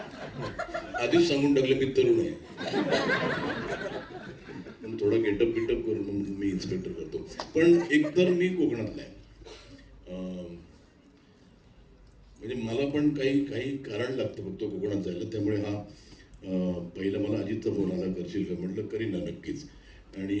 आधीच सांगून टाकलं मी तरुण आहे, पण थोडा गेटअप करून मी इन्स्पेक्टर करतो. पण एकतर मी कोकणातला आहे. म्हणजे मला पण काही कारण लागतं फक्त कोकणात जायला. त्यामुळे हा पहिला मला अजितचा फोन आला, करशील का? म्हटलं करीन ना, नक्कीच. आणि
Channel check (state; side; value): identical; both; correlation 1.00